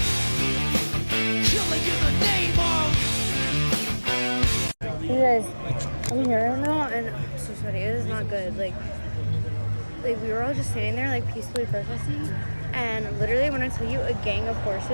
Killing in the name of. You guys, I'm here right now, and I'm so sorry. It is not good. Like we were all just standing there, like peacefully protesting, and literally, when I tell you, a gang of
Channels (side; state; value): both; inverted; correlation -1.00